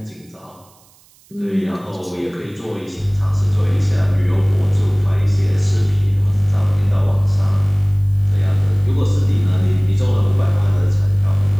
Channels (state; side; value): noise; right; hiss, 30 dB below the sound